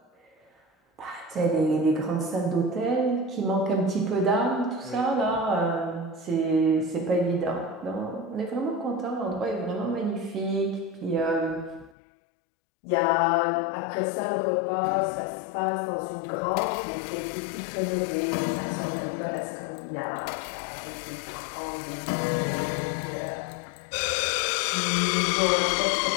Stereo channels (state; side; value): drops out; right; at 12.0 s